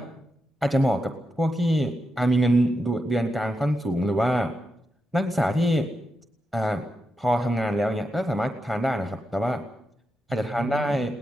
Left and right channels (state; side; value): normal; both; correlation 0.86